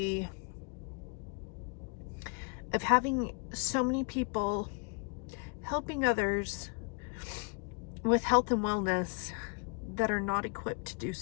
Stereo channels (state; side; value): quieter; right; 36.0 dB